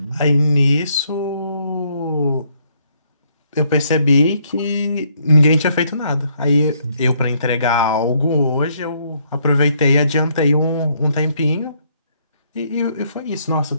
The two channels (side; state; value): both; inverted; correlation -0.70